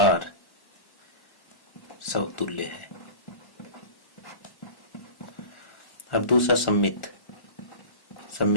समतुल्य है। अब दूसरा सम्मित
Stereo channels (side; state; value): right; late; 1.4 ms